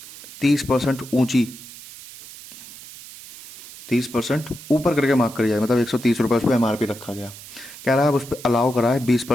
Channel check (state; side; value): noise; right; hiss, 16 dB below the sound